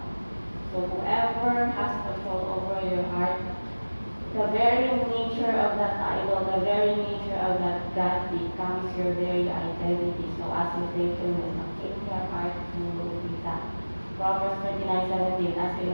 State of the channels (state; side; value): inverted; both; correlation -1.00